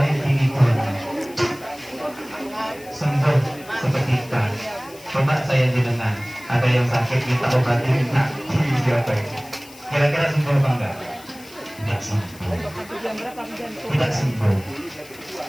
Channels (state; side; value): noise; left; hiss, 21 dB below the sound